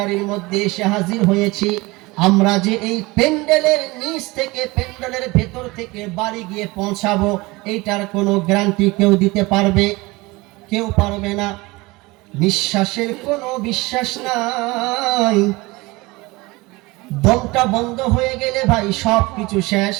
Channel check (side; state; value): left; quieter; 22.7 dB